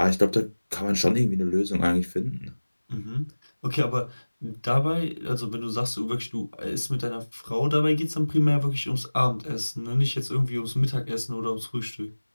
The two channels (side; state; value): both; inverted; correlation -1.00